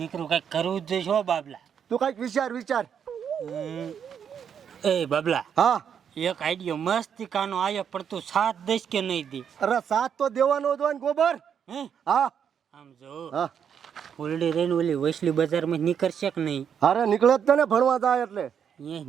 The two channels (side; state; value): left; quieter; 7.9 dB